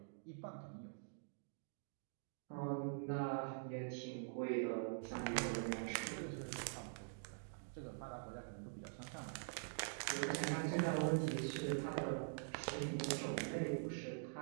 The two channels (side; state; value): left; silent; digital silence